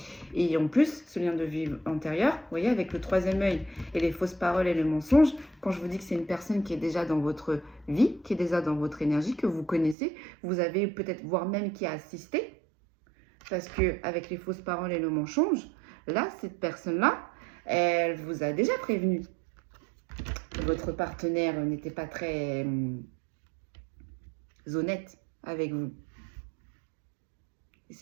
Et en plus, ce lien de vie antérieur, vous voyez, avec le troisième œil et les fausses paroles et les mensonges, quand je vous dis que c'est une personne qui est déjà dans votre vie, qui est déjà dans votre énergie, que vous connaissez, vous avez peut-être, voire même qui a assisté, parce qu'avec les fausses paroles et le mensonge, là, cette personne-là, elle vous a déjà prévenu. Votre partenaire n'était pas très honnête avec vous. Et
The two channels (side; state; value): left; drops out; at 10.0 s